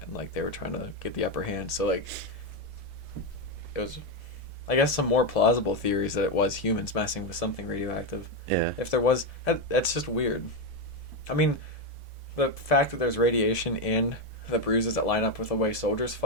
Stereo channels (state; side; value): normal; both; correlation 0.08